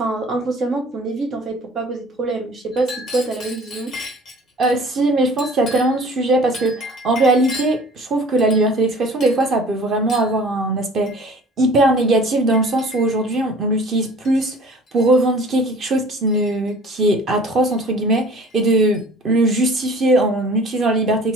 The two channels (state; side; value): normal; both; correlation 0.47